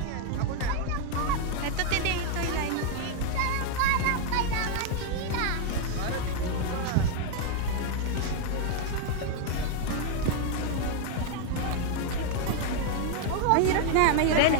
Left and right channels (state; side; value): different; both; correlation 0.00